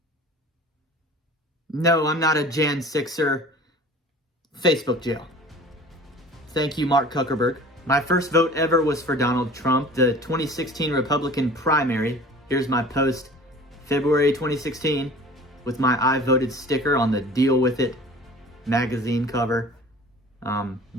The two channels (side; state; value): both; normal; correlation 0.44